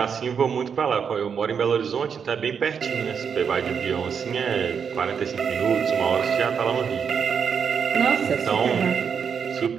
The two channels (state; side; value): quieter; left; 6.8 dB